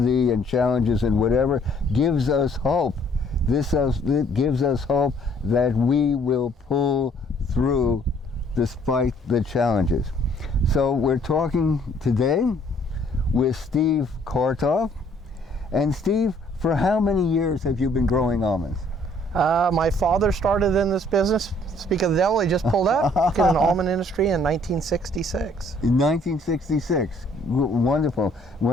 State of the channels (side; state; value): both; normal; correlation 0.61